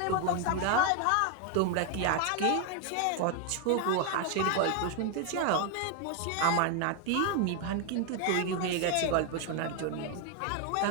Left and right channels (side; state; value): both; different; correlation 0.01